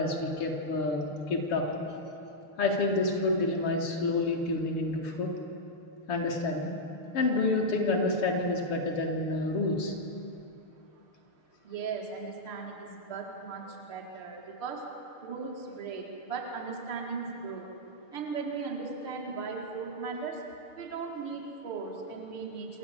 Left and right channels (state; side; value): late; right; 6.7 ms